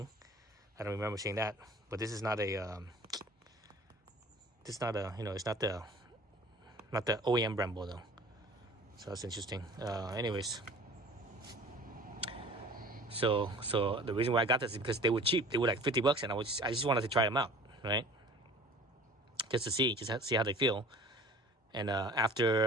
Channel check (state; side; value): normal; both; correlation 0.46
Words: I don't remember seeing that. But this is not a it's not the OEM Brembo though. So that's interesting. Anyways. So the reason why I got this is because they were cheap. They were like $50, and I just wanted to try them out, right? Just to see how they feel. And